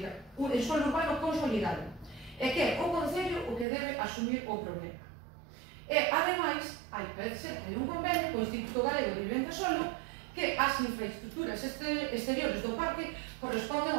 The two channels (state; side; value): drops out; left; at 3.7 s